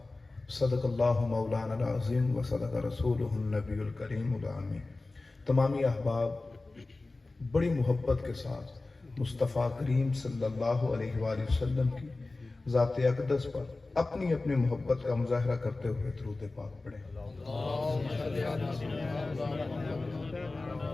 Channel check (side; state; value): right; quieter; 3.3 dB